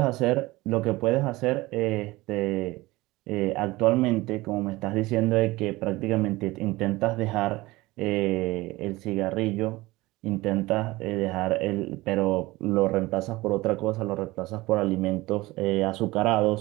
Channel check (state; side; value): quieter; left; 20.1 dB